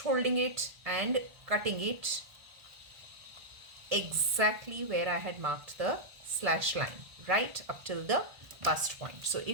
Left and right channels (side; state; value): left; late; 1.4 ms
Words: holding it and cutting it exactly where I had marked the slash line, right up till the bust point. So